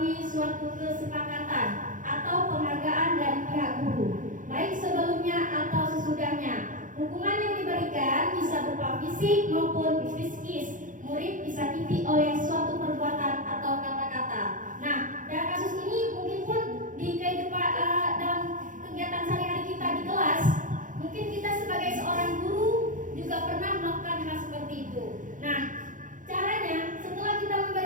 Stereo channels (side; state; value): left; late; 0.38 ms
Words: suatu kesepakatan atau penghargaan dari pihak guru, baik sebelumnya atau sesudahnya. Hukuman yang diberikan bisa berupa fisik maupun psikis. Murid disakiti oleh suatu perbuatan atau kata-kata. Nah, dalam kasus ini mungkin pun di kehidupan dalam kegiatan sehari-hari kita di kelas, mungkin kita sebagai seorang guru juga pernah melakukan hal seperti itu. Nah, caranya setelah kita